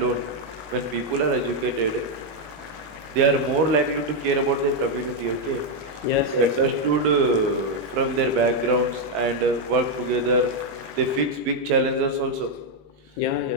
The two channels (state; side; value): late; left; 19 ms